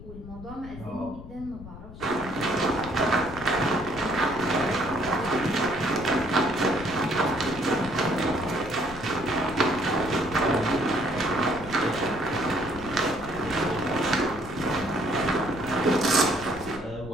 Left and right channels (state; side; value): noise; left; rumble, 14 dB below the sound